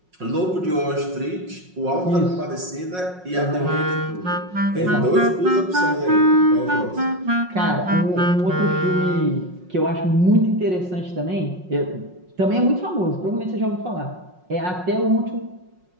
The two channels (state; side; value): late; left; 5.5 ms